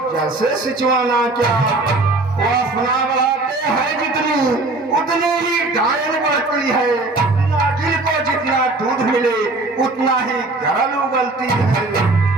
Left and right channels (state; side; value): quieter; left; 3.1 dB